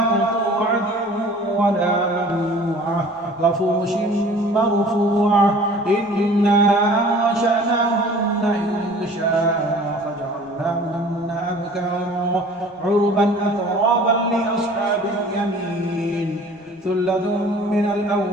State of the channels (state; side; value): normal; both; correlation 0.47